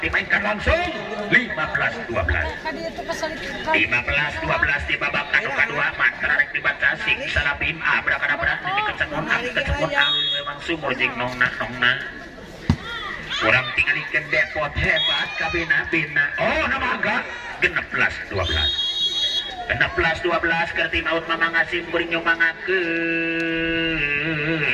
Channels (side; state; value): both; identical; correlation 1.00